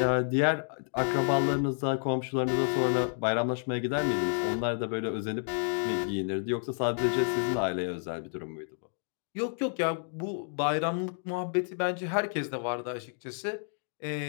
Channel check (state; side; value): silent; right; 58 dB below the other